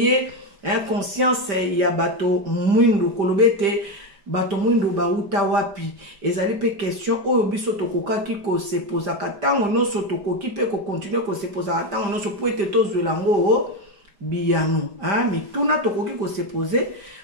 conscience ya bato mwindu kolobete bato mwindu ba uta wapi ezali pe question oyo biso tokokaki ko se posa katango noso tokoki pe ko continuer ko se posa katango noso poete tozwela ngo biyano mituna tokoki ko se poser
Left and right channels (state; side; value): late; left; 5.0 ms